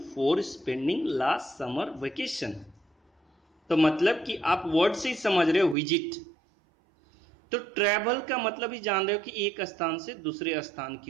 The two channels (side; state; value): left; drops out; at 5.8 s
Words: for spending last summer vacation. तो मतलब कि आप word से ही समझ रहे हो visit. तो travel का मतलब ही जान रहे हो कि एक स्थान से दूसरे स्थान